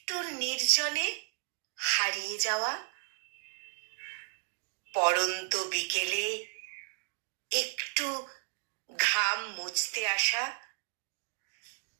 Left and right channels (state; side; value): silent; left; 55 dB below the other